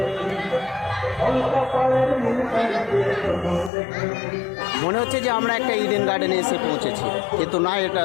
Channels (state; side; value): drops out; right; at 3.7 s